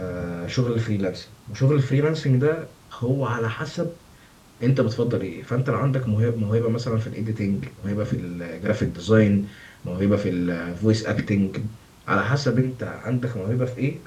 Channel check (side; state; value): both; identical; correlation 1.00